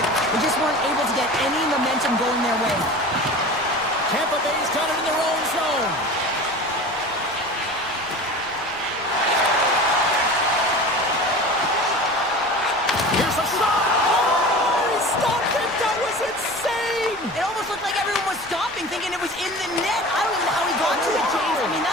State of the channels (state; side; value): noise; left; rumble, 25 dB below the sound